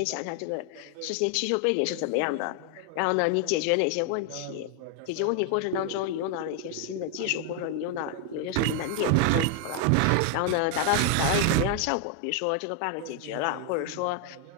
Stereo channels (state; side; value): different; both; correlation 0.00